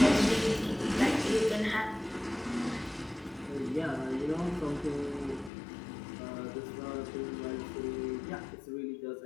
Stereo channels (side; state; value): right; drops out; at 5.5 s